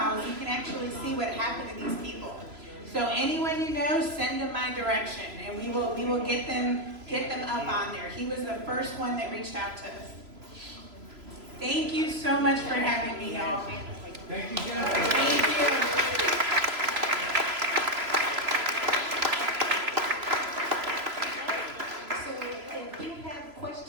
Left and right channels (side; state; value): left; late; 3.0 ms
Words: You can actually see what happened to these people. So anyone you know, send them my direction, and we will get them up on there. He was the first one that reached out to us. Thank you so much for having me, y'all. Thank you, Jennifer. Thank you. If you have